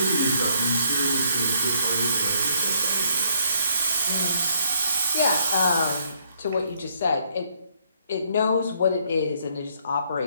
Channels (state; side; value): inverted; both; correlation -0.67